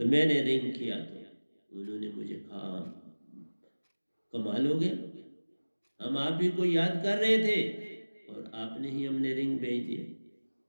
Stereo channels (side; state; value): both; inverted; correlation -1.00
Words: मैंने रिंग किया। तो उन्होंने मुझे कहा कमाल हो गया, हम आप ही को याद कर रहे थे और आपने ही हमने रिंग भेज दिया।